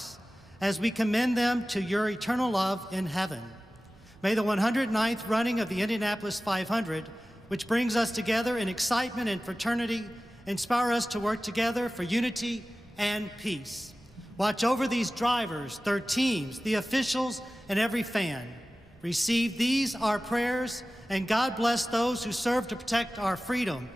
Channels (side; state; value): both; normal; correlation 0.96